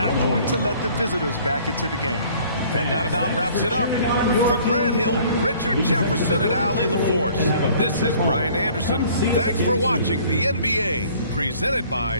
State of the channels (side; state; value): both; inverted; correlation -0.54